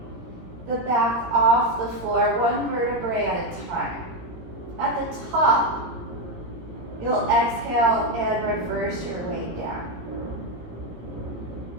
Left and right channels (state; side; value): late; left; 17 ms